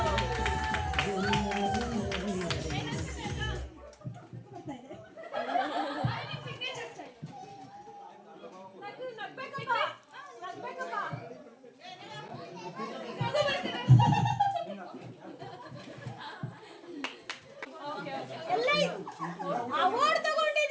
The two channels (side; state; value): both; identical; correlation 1.00